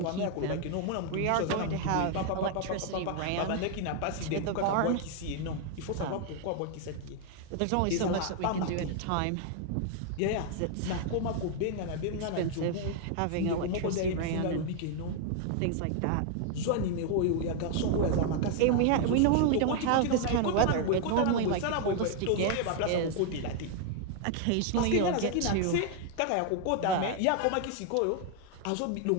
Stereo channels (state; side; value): different; both; correlation 0.00